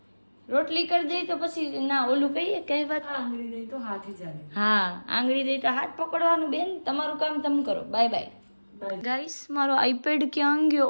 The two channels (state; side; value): inverted; both; correlation -1.00